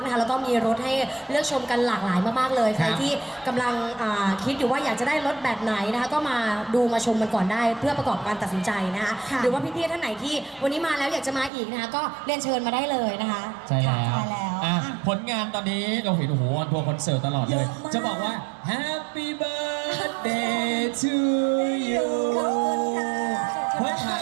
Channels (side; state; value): left; drops out; at 11.5 s